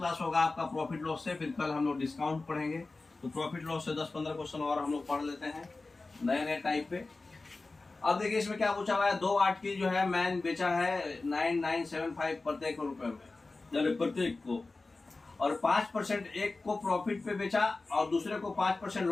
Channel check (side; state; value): right; quieter; 3.5 dB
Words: होगा आपका प्रॉफिट लॉस से, फिर कल हम लोग डिस्काउंट पढ़ेंगे। तो प्रॉफिट लॉस से 10-15 क्वेश्चन और हम लोग पढ़ लेते हैं नए नए टाइप पे। अब देखिए इसमें क्या पूछा हुआ है। 2 आर्टिकल जो है मैन बेचा है 9975 प्रत्येक रुपए में, प्रत्येक को, और 5% एक को प्रॉफिट पे बेचा और दूसरे को 5%